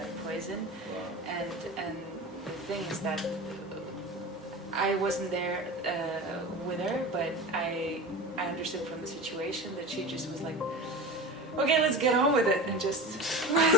poison, and the thing is that I wasn't there with her, but I understood from the situation that she just was like, okay, let's get on with it, and just.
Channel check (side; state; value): both; normal; correlation 0.31